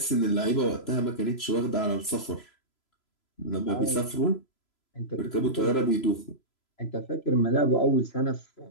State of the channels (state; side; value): late; right; 3.0 ms